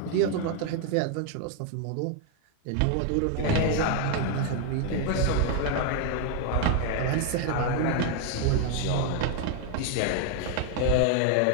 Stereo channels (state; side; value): different; both; correlation 0.00